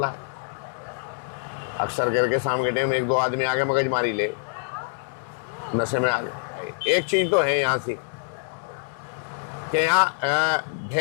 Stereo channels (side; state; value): right; silent; 61 dB below the other